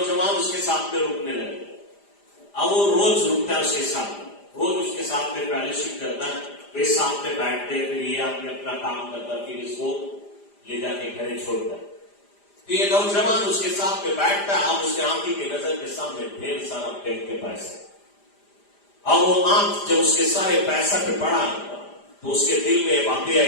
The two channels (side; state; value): right; late; 5.0 ms